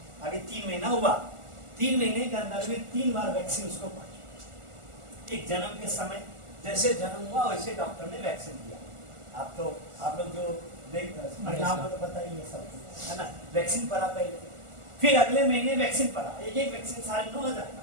अभी 3 महीना हुआ, 3 महीने के अंदर में 3 बार वैक्सीन उसको पहुंची। एक जन्म के समय जैसे जन्म हुआ वैसे डॉक्टर ने वैक्सीन दिया। आप लोग जो परिणाम को तो पता ही है सब, है ना, वैक्सीन पड़ा पहले, फिर अगले महीने वैक्सीन पड़ा, एक वैक्सीन 9,500 का,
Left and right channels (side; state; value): left; late; 1.4 ms